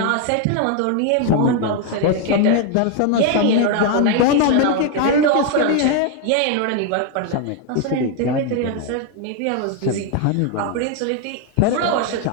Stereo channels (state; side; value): different; both; correlation 0.01